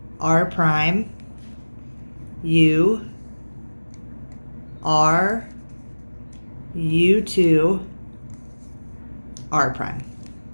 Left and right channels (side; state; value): both; inverted; correlation -1.00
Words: R prime, U, R, U2, R prime.